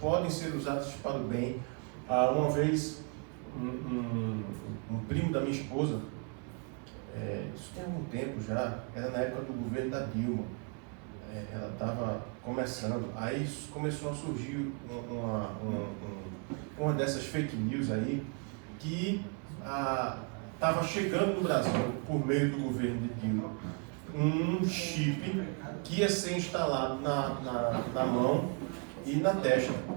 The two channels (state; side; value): quieter; left; 38.0 dB